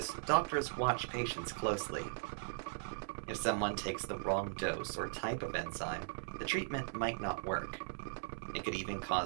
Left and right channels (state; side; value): silent; left; 52 dB below the other